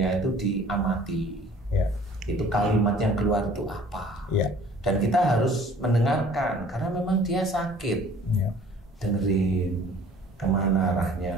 itu diamati. Ya. Itu kalimat yang keluar itu apa. Ya. Dan kita harus mendengarkan karena memang dia sakit. Ya. Dengerin kemana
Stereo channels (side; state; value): both; normal; correlation 0.52